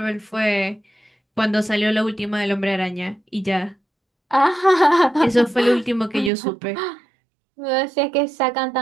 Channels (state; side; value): drops out; left; at 6.3 s